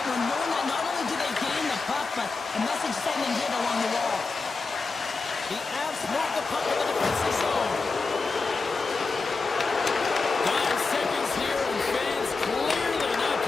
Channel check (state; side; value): quieter; right; 4.2 dB